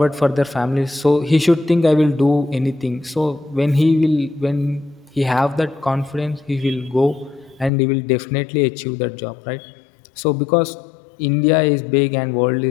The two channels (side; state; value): right; drops out; at 7.7 s